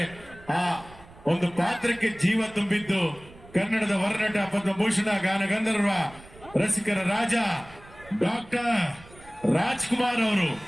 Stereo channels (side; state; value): right; noise; rumble, 22 dB below the sound